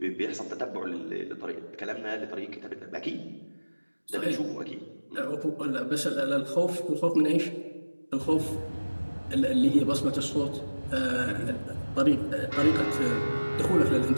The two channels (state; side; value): inverted; both; correlation -1.00